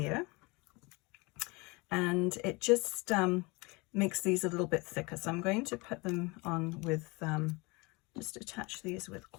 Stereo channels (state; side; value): quieter; right; 26.1 dB